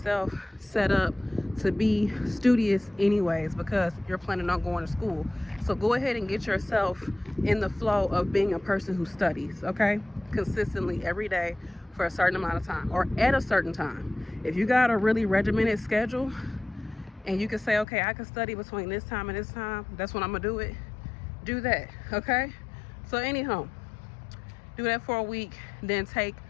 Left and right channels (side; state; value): right; drops out; at 17.9 s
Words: set up to be studious anyways, because you're planning on going to school. So go ahead and get yourself in the flow of being a person who studies, okay, consistently every day for a certain amount of time, or at a certain time. If you got a really regimented schedule and you can say, okay, I can study between this time and this time, that's when I'm gonna do it, do that. Okay, so anyhow, do that for a week, then take